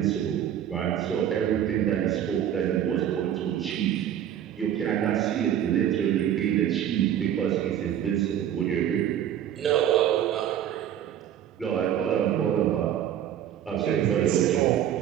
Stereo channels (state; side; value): quieter; left; 10.4 dB